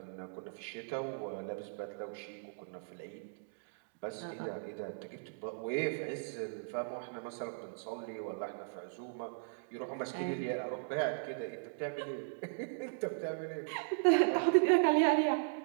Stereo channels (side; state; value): left; silent; digital silence